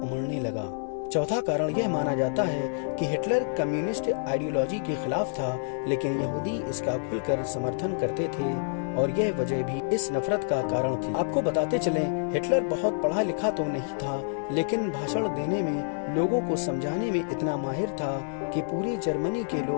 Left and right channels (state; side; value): silent; right; digital silence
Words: उमड़ने लगा। चौथा कारण यह माना जाता है कि हिटलर कम्युनिस्ट आइडियोलॉजी के खिलाफ था, लेकिन यहूदी इसका खुलकर समर्थन करते थे और यह वजह भी इस नफरत का कारण थी। आपको बताते चलें, हिटलर बहुत पढ़ा लिखा तो नहीं था, लेकिन भाषण देने में, लोगों को समझाने में इतना माहिर था कि पूरी जर्मनी के